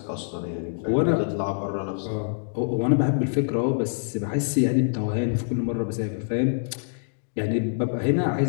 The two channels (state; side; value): silent; right; digital silence